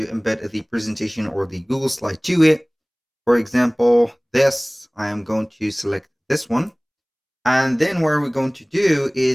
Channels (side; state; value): both; identical; correlation 1.00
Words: embed the presentation or the Google slide to it. For example, I am going to select this one. And then what we're going to do